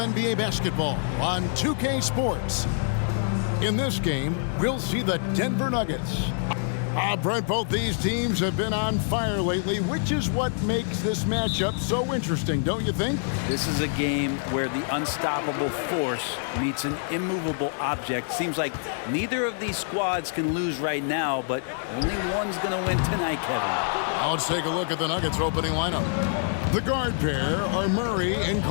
NBA basketball on 2K Sports. In this game, we'll see the Denver Nuggets. Brent, both these teams have been on fire lately, which is what makes this matchup so interesting, don't you think? This is a game where the unstoppable force meets an immovable object. Seems like neither of these squads can lose right now, but only one's going to win tonight, Kevin. Now let's take a look at the Nuggets opening lineup. The guard pair are Murray and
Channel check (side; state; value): right; silent; digital silence